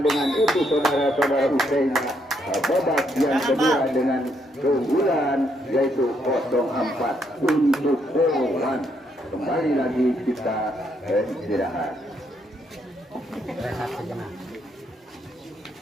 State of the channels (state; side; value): normal; both; correlation 0.74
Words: dengan itu saudara-saudara Usain. Babak yang kedua dengan keunggulan yaitu 0-4 untuk Polwan. Kembali lagi kita istirahat.